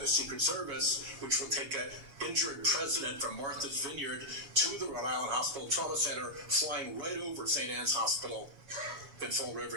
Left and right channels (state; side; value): late; left; 7.2 ms